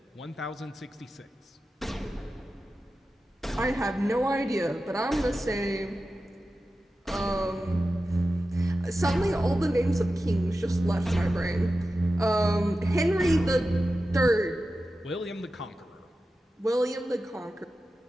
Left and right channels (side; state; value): both; normal; correlation 0.93